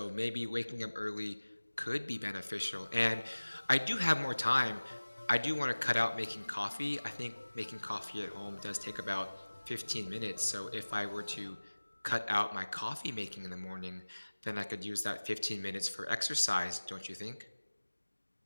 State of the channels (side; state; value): both; inverted; correlation -1.00